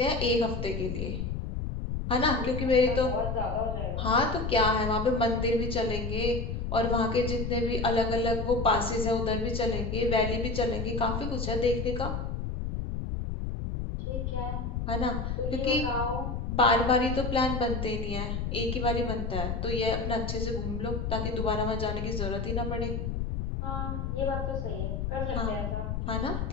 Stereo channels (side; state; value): left; noise; rumble, 3 dB below the sound